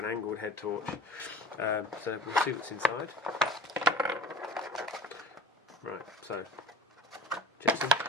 angled head torch. So we'll see what's inside. Right, so Jetson.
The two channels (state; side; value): normal; both; correlation 0.38